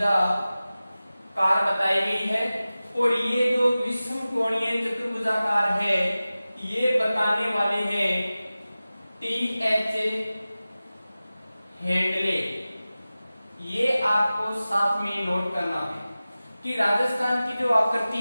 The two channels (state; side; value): inverted; both; correlation -0.96